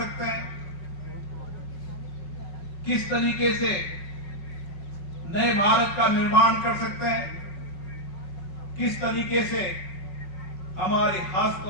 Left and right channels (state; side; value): late; right; 5.4 ms